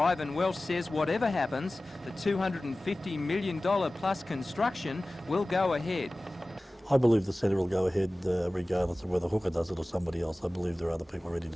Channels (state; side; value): normal; both; correlation 0.97